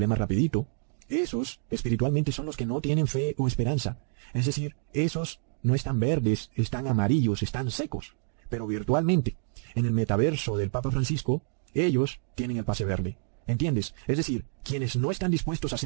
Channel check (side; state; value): left; silent; digital silence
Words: rapidito, esos espiritualmente son los que no tienen fe o esperanza. Es decir, esos no están verdes, están amarillos, están secos. Pero virtualmente, en el metaverso del Papa Francisco, ellos tienen el pase verde. ¿Entiendes? Es decir, quienes no están dispuestos a